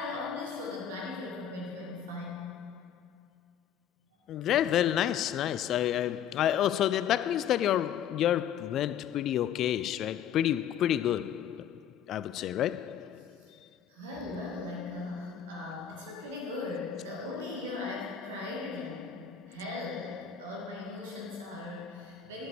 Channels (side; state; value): right; quieter; 9.3 dB